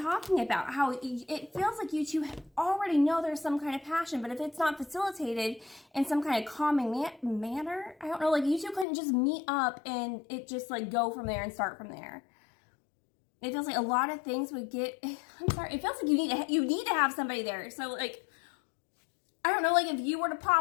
about. How it feels like you two already know there's some kind of passion, but if it's not facilitated in some kind of calming manner, I don't know, like you two couldn't just meet up and it just like go from there and start from there. It feels like a lot of things would get, I'm sorry, it feels like you need to have somebody there. So like, I don't know, like if you were to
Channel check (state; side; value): drops out; right; at 8.8 s